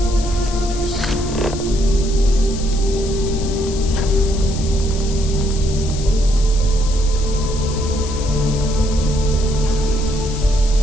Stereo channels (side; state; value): left; noise; hiss, 12 dB below the sound